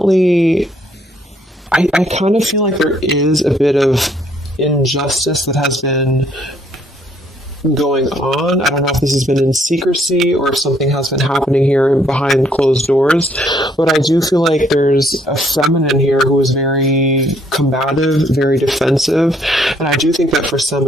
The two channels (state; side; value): normal; both; correlation 0.67